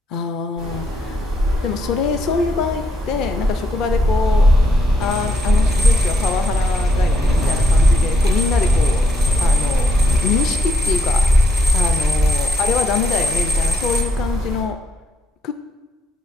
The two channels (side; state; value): both; normal; correlation 0.75